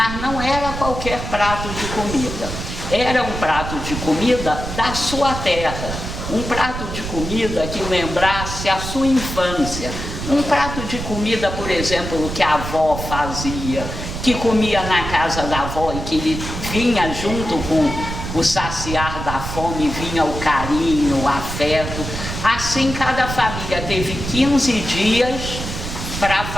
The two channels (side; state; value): right; noise; rumble, 6 dB below the sound